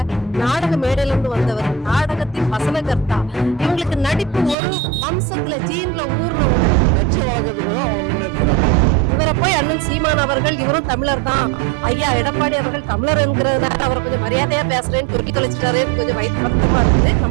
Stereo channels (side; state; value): left; drops out; at 4.5 s